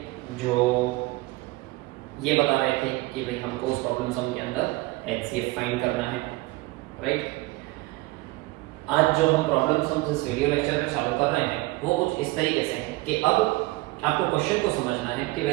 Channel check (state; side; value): quieter; left; 21.4 dB